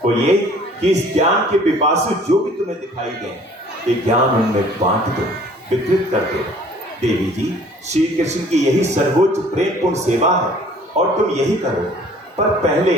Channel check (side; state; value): both; normal; correlation 0.53